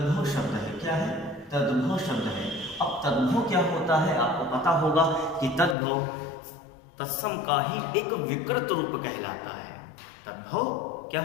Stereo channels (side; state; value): right; drops out; at 5.8 s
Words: शब्द है। क्या है? तद्भव शब्द है। अब तद्भव क्या होता है? आपको पता होगा कि तद्भव तत्सम का ही एक विकृत रूप कहलाता है। तद्भव क्या